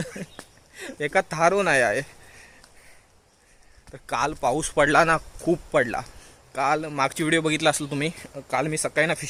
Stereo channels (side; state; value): both; identical; correlation 1.00